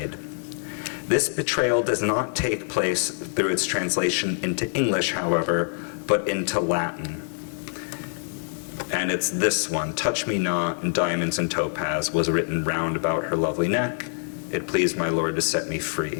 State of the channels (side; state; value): right; silent; digital silence